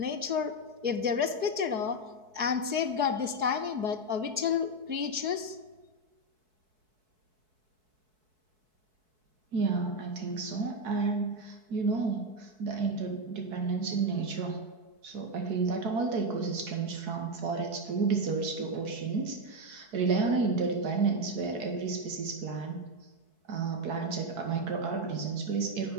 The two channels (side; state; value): left; late; 4.6 ms